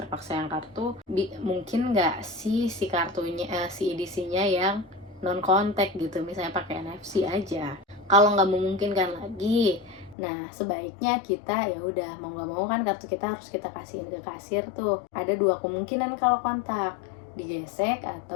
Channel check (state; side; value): drops out; right; at 10.2 s